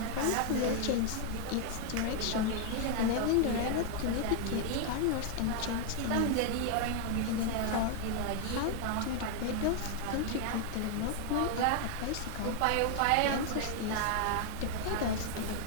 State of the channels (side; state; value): both; different; correlation 0.00